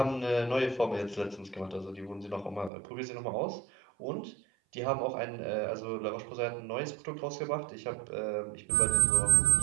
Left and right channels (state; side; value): drops out; left; at 2.7 s